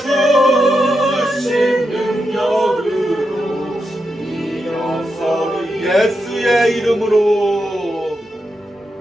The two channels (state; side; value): normal; both; correlation 0.86